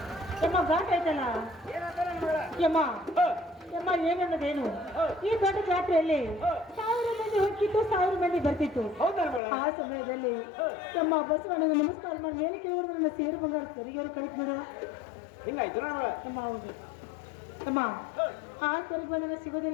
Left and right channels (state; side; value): drops out; right; at 9.4 s